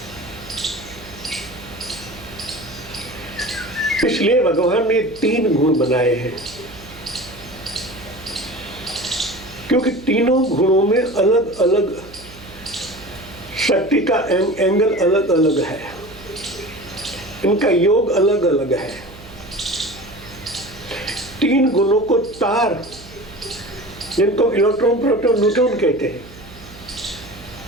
इसलिए भगवान ने 3 गुण बनाए हैं, क्योंकि तीनों गुणों में अलग अलग शक्ति का एंगल अलग अलग है, इनका योग अलग अलग है। 3 गुणों को तार, जिनको इलेक्ट्रॉन, प्रोटॉन, न्यूट्रॉन कहते हैं।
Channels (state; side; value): noise; right; hum, 19 dB below the sound